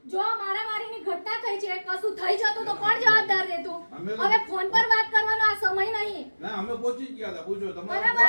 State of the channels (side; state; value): both; inverted; correlation -1.00